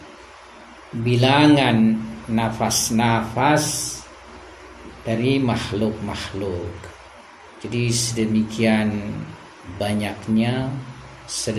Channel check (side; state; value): both; identical; correlation 1.00